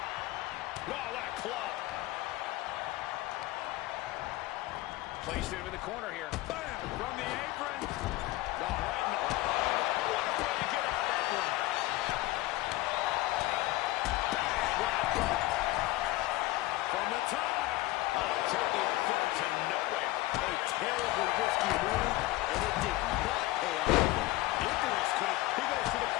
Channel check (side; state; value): right; quieter; 18.3 dB